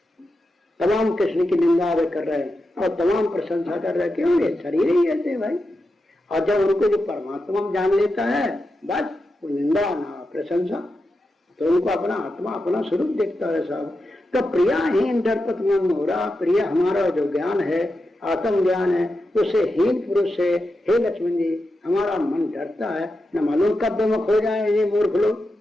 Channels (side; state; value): both; normal; correlation 0.89